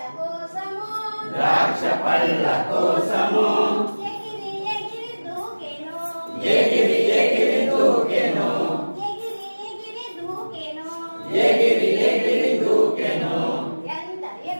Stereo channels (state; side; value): inverted; both; correlation -1.00